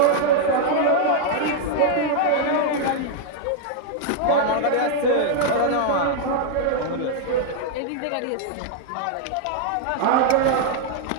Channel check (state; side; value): different; both; correlation 0.00